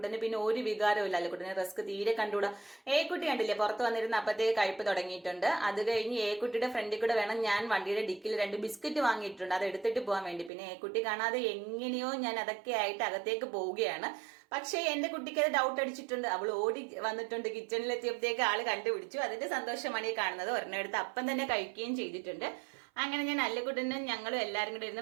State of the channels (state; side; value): drops out; left; at 10.5 s